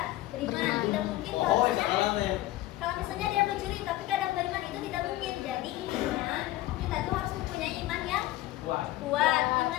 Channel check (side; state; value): right; quieter; 16.3 dB